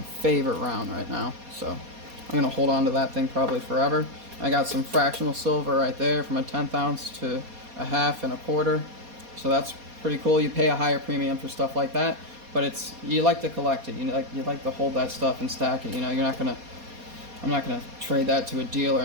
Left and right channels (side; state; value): left; late; 4.2 ms